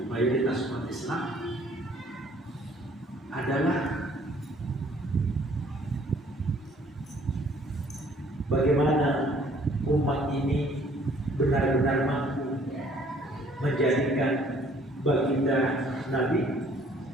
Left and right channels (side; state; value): both; normal; correlation 0.59